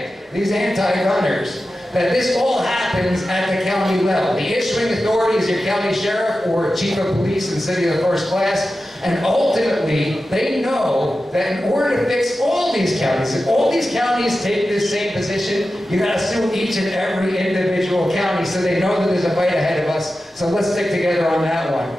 these anti-gunners, that this all happens at the county level. The issuing authority is your county sheriff or chief of police in the city of the first class. And ultimately, they know that in order to fix all these counties, if all these counties take this same position, you got to sue each and every individual county so they know that there's a fight ahead of us. So let's stick together on that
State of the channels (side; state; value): both; normal; correlation 0.93